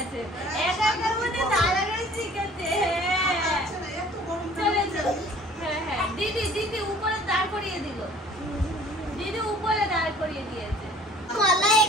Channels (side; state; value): both; normal; correlation 0.52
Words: একা একা উঠে দাঁড়ানো শিখেছে। হ্যাঁ হ্যাঁ দিদি দিদি উপরে দাঁড় করিয়ে দিল, দিদি উপরে দাঁড় করিয়ে দিয়েছে। মালাই